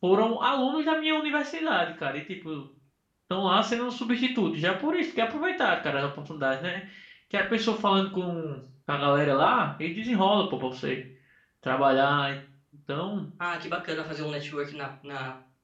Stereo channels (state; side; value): identical; both; correlation 1.00